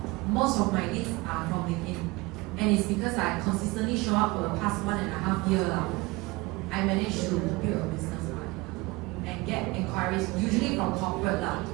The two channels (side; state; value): left; quieter; 22.9 dB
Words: Most of my leads are from LinkedIn. And it's because I consistently show up for the past 1.5 years now. I managed to build a business and get inquiries, usually from corporate